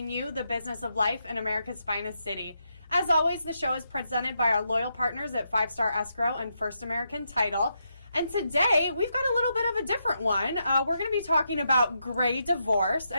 you the business of life in America's finest city. As always, the show is presented by our loyal partners at 5 Star Escrow and First American Title. And today, we've got a little bit of a different one. We're going to be talking about gray divorce.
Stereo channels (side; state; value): both; inverted; correlation -0.82